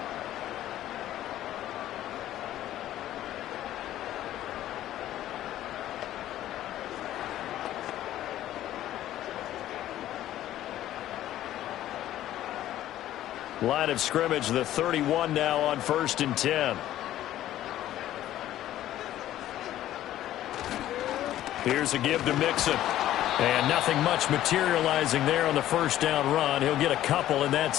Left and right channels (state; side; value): quieter; right; 13.2 dB